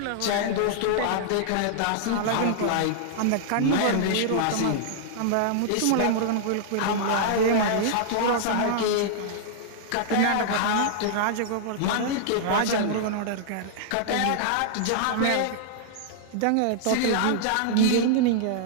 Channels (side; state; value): both; different; correlation -0.01